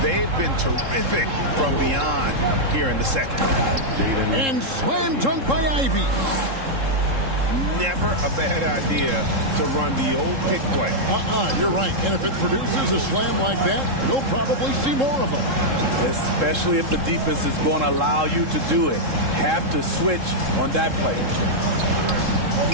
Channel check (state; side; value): late; left; 3.7 ms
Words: they've been terrific from beyond here in the second. And slam dunk by Ivy. Never a bad idea to run the old pick play. You're right. And if it produces a slam like that, you'll probably see more of them. Especially if the defense is going to allow you to do it. Have to switch on that play.